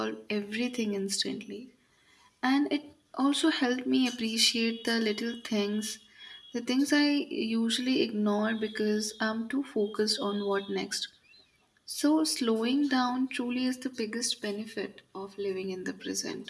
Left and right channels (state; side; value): identical; both; correlation 1.00